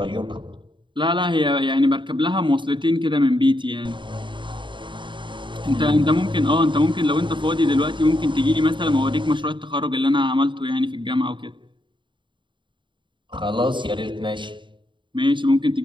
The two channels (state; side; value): late; left; 0.23 ms